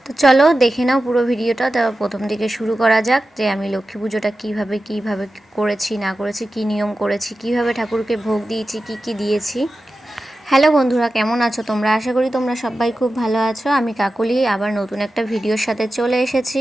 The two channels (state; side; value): normal; both; correlation 0.93